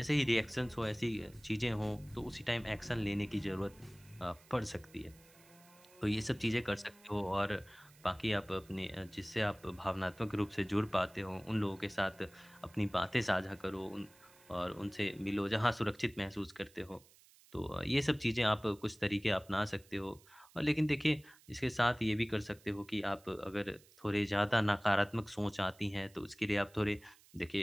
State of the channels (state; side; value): noise; right; hiss, 26 dB below the sound